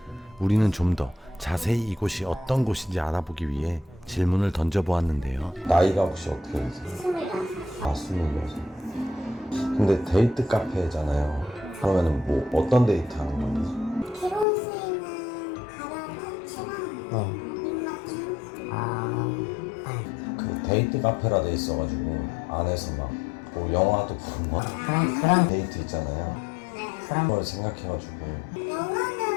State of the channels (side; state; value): right; drops out; at 14.5 s